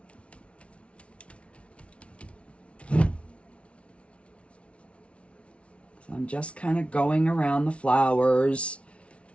So I'm just kind of going around the flowers.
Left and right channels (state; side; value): late; right; 0.061 ms